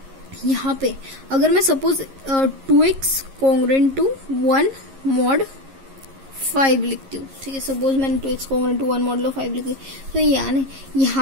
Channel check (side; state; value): left; late; 11 ms